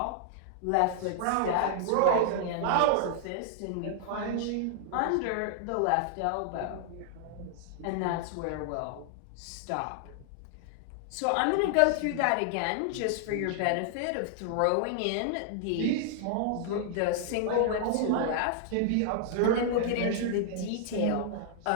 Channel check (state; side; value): different; both; correlation -0.01